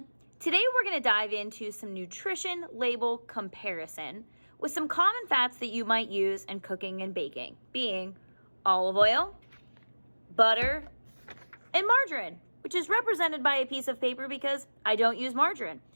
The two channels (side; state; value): both; inverted; correlation -1.00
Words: Today we're going to dive into some nutrition label comparison with some common fats that you might use in cooking and baking, being olive oil, butter, and margarine, which is represented by a piece of paper because I don't use margarine.